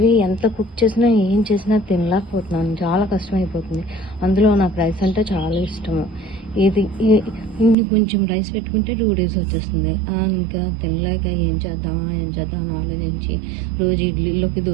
ఎంత కుక్ చేసినా ఏం చేసినా తినలేకపోతున్నాను, చాలా కష్టమైపోతుంది. అందులో నాకు రైస్ అంటే చాలా ఇష్టము. ఇన్ని కొంచెం రైస్ పెట్టుకుంటే 2 days వచ్చేస్తుంది. ఇంకా తినలేక ఏం చేద్దాం అని ఆలోచించి రోజు ఇడ్లీలోకి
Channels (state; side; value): drops out; left; at 7.8 s